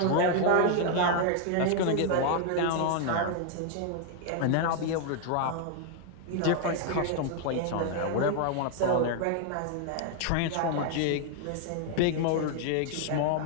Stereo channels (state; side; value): different; both; correlation 0.00